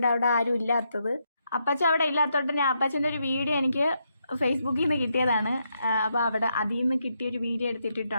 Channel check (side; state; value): both; inverted; correlation -0.80